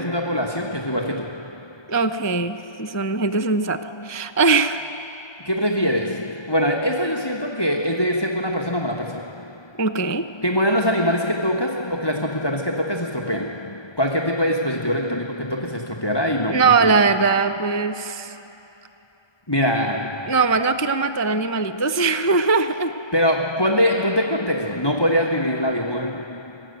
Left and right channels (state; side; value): late; right; 1.2 ms